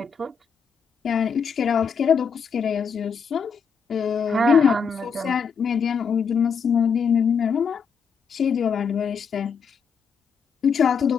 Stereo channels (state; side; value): quieter; right; 6.1 dB